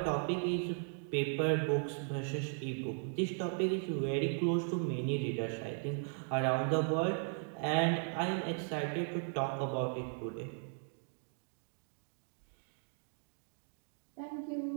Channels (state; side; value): silent; left; 53 dB below the other